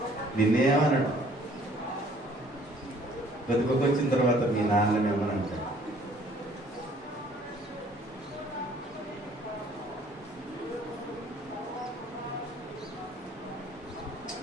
బతుకొక వచ్చిన తర్వాత మీ నాన్ననేమని అంటాడు.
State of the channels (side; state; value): both; normal; correlation 0.58